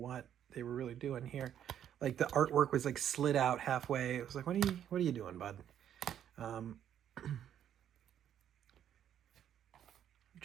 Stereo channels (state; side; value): quieter; left; 9.9 dB